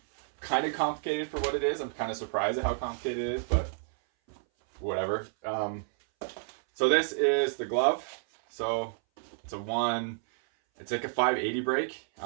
kind of complicated for what it is. I'm kind of surprised at how complicated it is, but whatever. So this is the glove. So it's like a 580 break.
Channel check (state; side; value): silent; left; 58 dB below the other